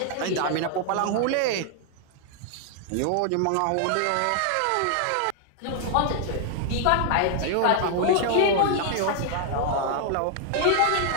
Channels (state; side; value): different; both; correlation 0.00